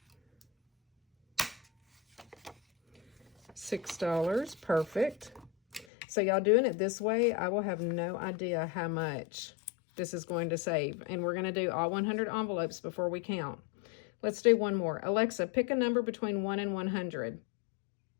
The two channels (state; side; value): drops out; right; at 5.9 s